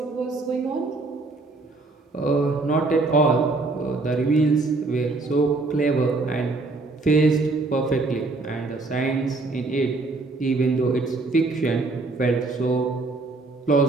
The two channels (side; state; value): left; quieter; 3.5 dB